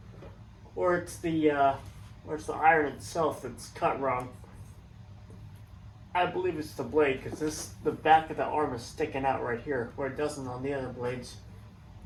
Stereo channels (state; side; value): identical; both; correlation 1.00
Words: or it's the iron itself that's cut wrong. I believe it's the blade because the back of the arm is sticking out right here where it doesn't on the other blades.